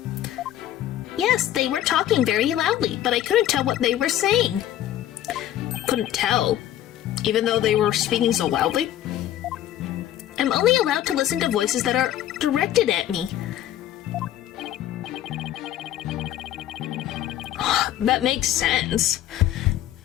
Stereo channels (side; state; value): right; quieter; 12.2 dB